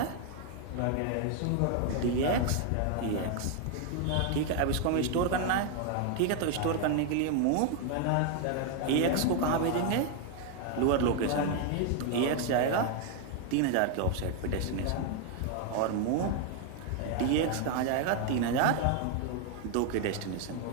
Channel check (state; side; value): different; both; correlation 0.00